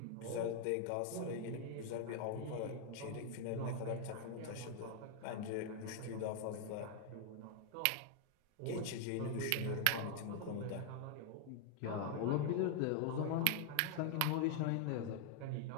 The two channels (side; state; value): both; different; correlation 0.00